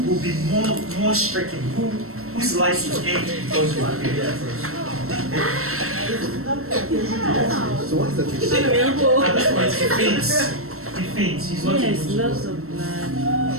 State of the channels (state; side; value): late; left; 0.63 ms